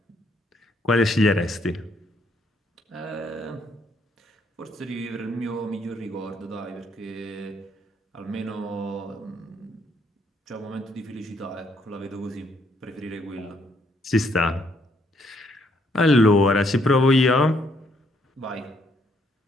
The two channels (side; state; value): both; normal; correlation 0.71